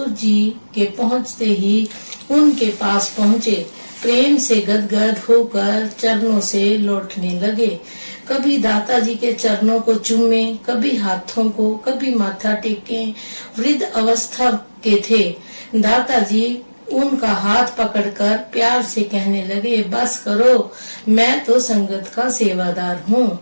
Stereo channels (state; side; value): inverted; both; correlation -1.00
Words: जी के पहुंचते ही उनके पास पहुंचे। प्रेम से गदगद होकर चरणों से लौटने लगे। कभी दाताजी के चरणों को चूमे, कभी हाथों को, कभी माथा टेके। वृद्ध अवस्था के थे। दाताजी उनका हाथ पकड़कर प्यार से कहने लगे, बस करो, मैं तो संगत का सेवादार हूँ,